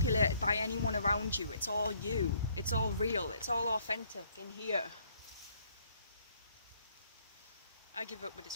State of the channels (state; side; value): inverted; both; correlation -0.65